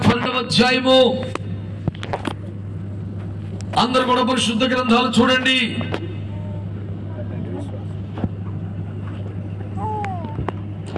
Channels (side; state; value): both; identical; correlation 1.00